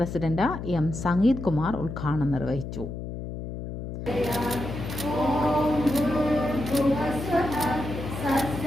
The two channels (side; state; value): left; noise; hum, 7 dB below the sound